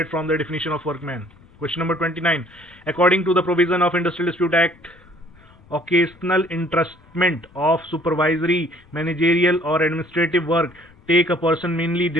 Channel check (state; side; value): noise; left; rumble, 27 dB below the sound